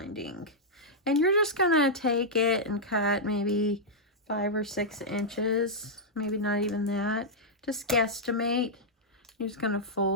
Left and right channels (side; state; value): both; normal; correlation -0.08